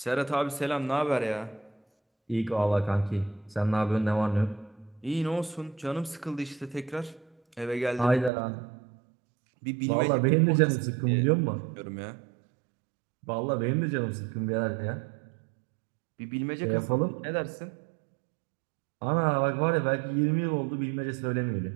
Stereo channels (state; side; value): drops out; left; at 8.3 s